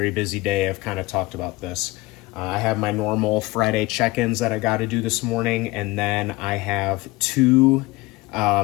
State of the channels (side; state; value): right; quieter; 21.0 dB